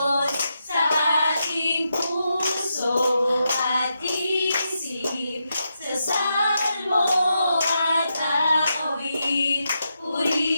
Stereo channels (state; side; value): inverted; both; correlation -0.85